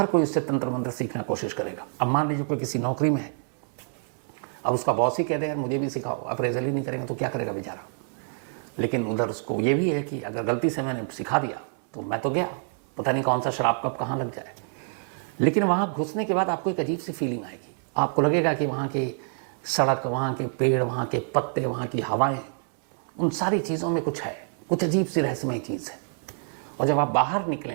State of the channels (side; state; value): left; silent; 60 dB below the other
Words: कोई उससे तंत्र मंत्र सीखना कोशिश करेगा। अब मान लीजिए कोई किसी नौकरी में है, अब उसका बॉस ही कह दे यार मुझे भी सिखाओ, अप्रेजल ही नहीं करेंगे तो क्या करेगा बेचारा। लेकिन उधर उसको ये भी है कि अगर गलती से मैंने सिखा दिया तो मैं तो गया, पता नहीं कौन सा शराब कब कहाँ लग जाए। लेकिन वहाँ घुसने के बाद आपको एक अजीब सी फीलिंग आएगी। आपको लगेगा कि वहाँ की सड़क, वहाँ के पेड़, वहाँ के पत्ते, वहाँ की हवाएं, उन सारी चीज़ों में कुछ है, कुछ अजीब सी रहस्यमय चीज़ है। और जब आप बाहर